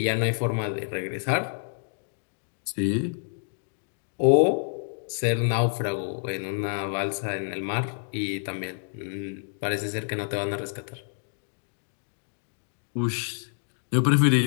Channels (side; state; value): right; silent; digital silence